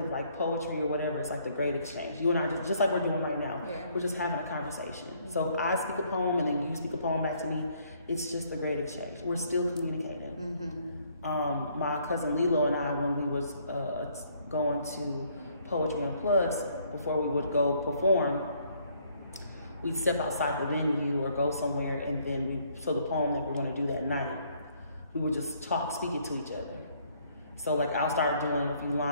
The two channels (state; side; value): inverted; both; correlation -0.65